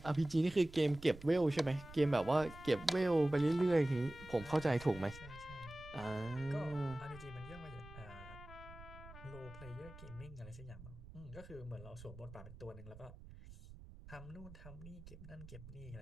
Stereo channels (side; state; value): right; noise; rumble, 16 dB below the sound